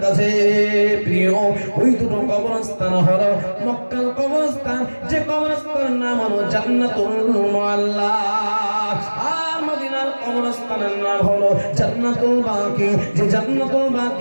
কাছে প্রিয়। ওই দুটো কবরস্থান হলো মক্কা কবরস্থান, যে কবরস্থানের নাম হলো জান্নাতুল মুআল্লা, আর মদিনার কবরস্থানের নাম হলো জান্নাতুল বাকি। যে জান্নাতুল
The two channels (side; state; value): both; inverted; correlation -1.00